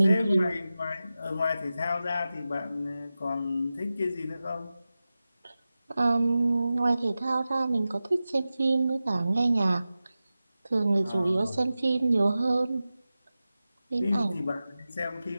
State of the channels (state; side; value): inverted; both; correlation -0.95